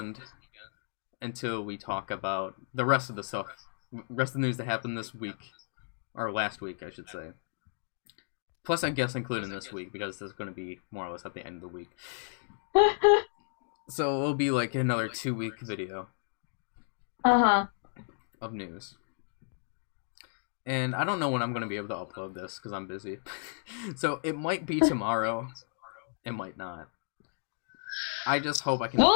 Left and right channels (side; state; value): right; silent; digital silence